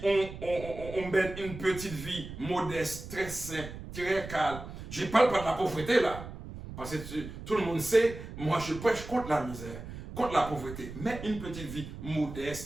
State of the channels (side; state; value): right; noise; rumble, 11 dB below the sound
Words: on mène une petite vie modeste, très simple, très calme. Je ne parle pas de la pauvreté là. Parce que tout le monde sait, moi je prêche contre la misère, contre la pauvreté. Mais une petite vie